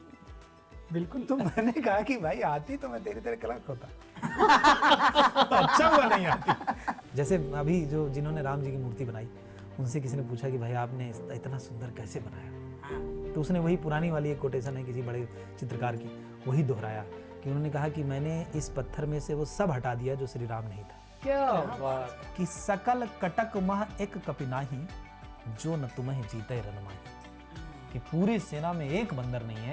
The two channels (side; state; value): both; identical; correlation 1.00